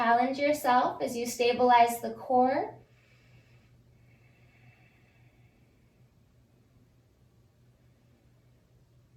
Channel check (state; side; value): identical; both; correlation 1.00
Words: yourself as you stabilize the core.